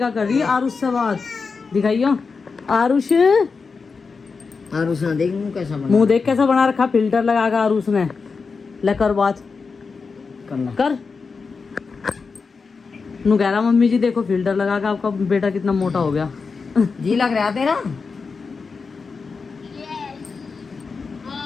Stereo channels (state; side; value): quieter; right; 4.8 dB